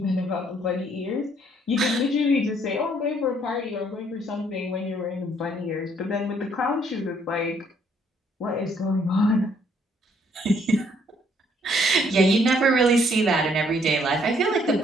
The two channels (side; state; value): both; normal; correlation 0.66